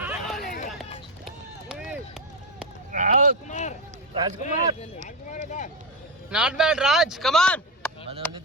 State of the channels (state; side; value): normal; both; correlation 0.11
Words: నాట్ బ్యాడ్ రాజ్ కమాన్